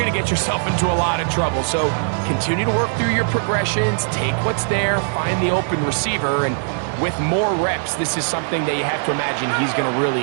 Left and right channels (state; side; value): silent; left; 64 dB below the other